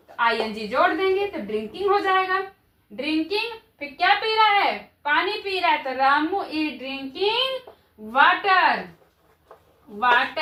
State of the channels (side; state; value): both; identical; correlation 1.00